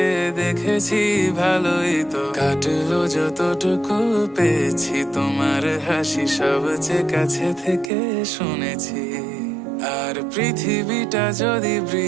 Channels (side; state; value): left; drops out; at 7.9 s